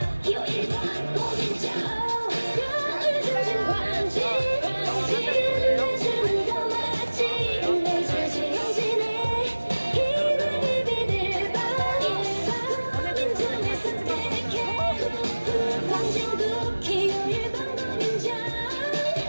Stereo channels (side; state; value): both; inverted; correlation -1.00